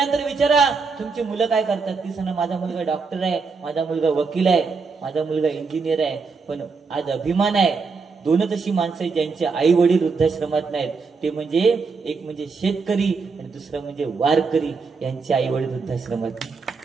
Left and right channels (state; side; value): quieter; left; 4.8 dB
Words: विचारा तुमची मुलं काय करतात. ती सांगा माझा मुलगा डॉक्टर आहे, माझा मुलगा वकील आहे, माझा मुलगा इंजिनियर आहे. पण आज अभिमान आहे 2च अशी माणसं आहेत ज्यांचे आई वडील वृद्धाश्रमात नाहीत. ते म्हणजे एक म्हणजे शेतकरी आणि दुसरं म्हणजे वारकरी. यांचे आई वडील वृद्धाश्रमात.